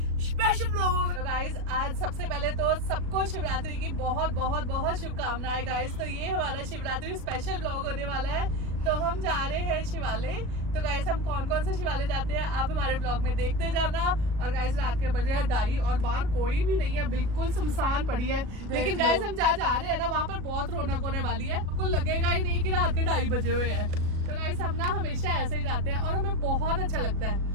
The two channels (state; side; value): late; left; 37 ms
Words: स्पेशल व्लॉग होगा। तो गाइस आज सबसे पहले तो सबको शिवरात्रि की बहुत बहुत बहुत शुभकामनाएं गाइस। तो ये हमारा शिवरात्रि स्पेशल व्लॉग होने वाला है। तो हम जा रहे हैं शिवालय। तो गाइस हम कौन कौन से शिवालय जाते हैं आप हमारे ब्लॉग में देखते जाना। और गाइस रात के बजे 2:30 और बाहर कोई भी नहीं है, बिल्कुल सुनसान पड़ी है। लेकिन गाइस हम जा रहे हैं ना, वहाँ पर बहुत रौनक होने वाली है। आपको लगेगा ही नहीं कि रात के 2:30 बजे हुए हैं। तो गाइस हम ना हमेशा ऐसे ही जाते हैं और हमें बहुत अच्छा लगता है।